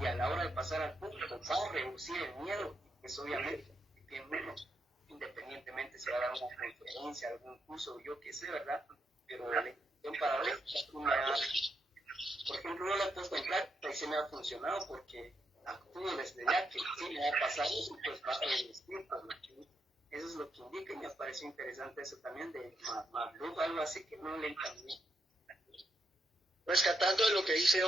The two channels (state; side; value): normal; both; correlation 0.81